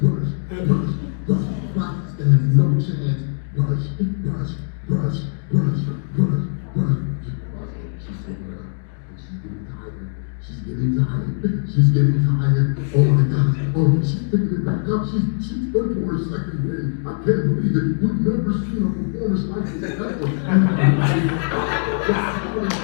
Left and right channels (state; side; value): silent; right; digital silence